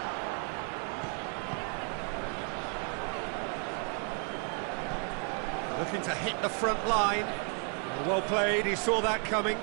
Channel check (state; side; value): quieter; left; 37.0 dB